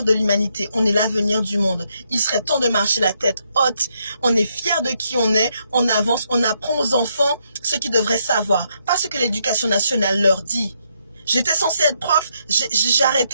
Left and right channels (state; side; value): inverted; both; correlation -0.76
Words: de l'humanité, on est l'avenir du monde. Il serait temps de marcher la tête haute. On est fiers de qui on est, on avance, on apprend aux enfants ce qu'ils devraient savoir. Pas ce que l'éducation nationale leur dit. J'étais censée être prof, j'ai